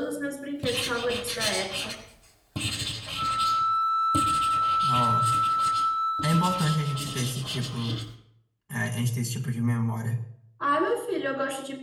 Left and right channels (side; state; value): both; identical; correlation 1.00